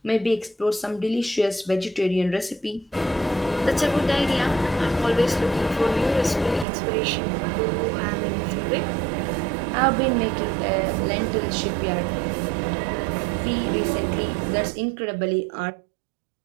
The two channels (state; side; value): drops out; left; at 6.7 s